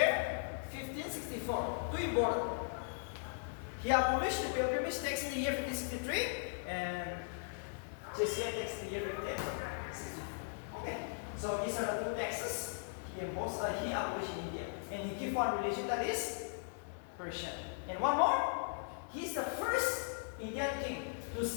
1564. Too important. He abolished the pilgrimage tax in the year 1563 and Jizya tax in the year 1564. Okay. So these are the two taxes he abolished in India. And he gave one religion, that is Persian. And one more. He is the first Indian king to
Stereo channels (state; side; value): silent; right; digital silence